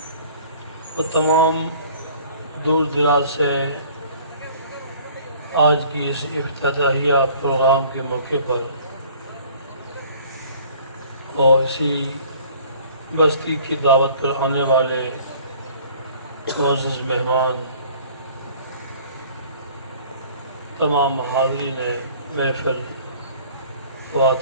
اور تمام دور دراز سے آج کی اس افتتاحیہ پروگرام کے موقع پر اور اسی بستی کی دعوت پر آنے والے معزز مہمان، تمام حاضرین محفل،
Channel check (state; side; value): inverted; both; correlation -0.52